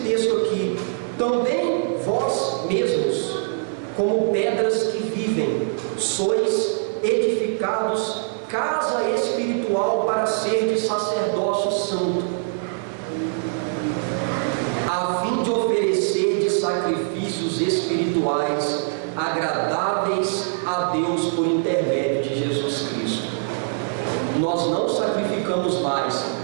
texto aqui: também vós mesmos, como pedras que vivem, sois edificados casa espiritual para ser de sacerdócio santo, a fim de oferecer de sacrifícios espirituais agradáveis a Deus por intermédio de Jesus Cristo. Nós não sacrificamos mais,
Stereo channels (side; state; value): left; silent; 63 dB below the other